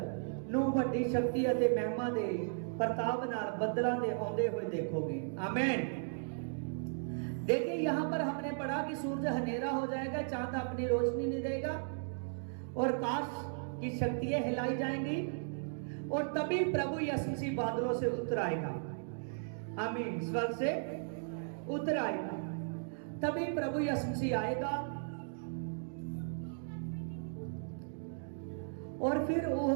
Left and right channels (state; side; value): silent; left; digital silence